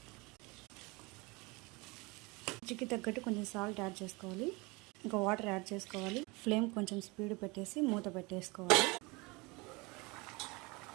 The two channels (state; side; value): quieter; left; 25.9 dB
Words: రుచికి తగ్గట్టు కొంచెం సాల్ట్ యాడ్ చేసుకోవాలి. ఇంకా వాటర్ యాడ్ చేసుకోవాలి. ఫ్లేమ్ కొంచెం స్పీడ్ పెట్టేసి మూత పెట్టేసుకోవాలి.